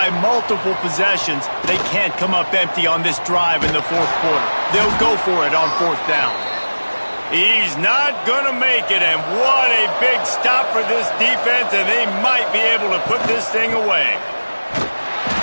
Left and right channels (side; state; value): both; inverted; correlation -1.00